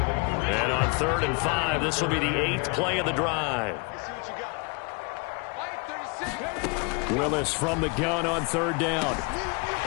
And on 3rd and 5, this will be the 8th play of the drive. Willis from the gun on 3rd down.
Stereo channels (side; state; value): right; quieter; 31.6 dB